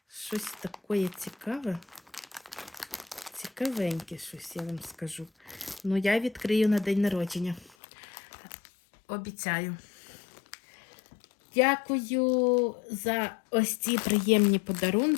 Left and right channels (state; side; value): drops out; right; at 7.7 s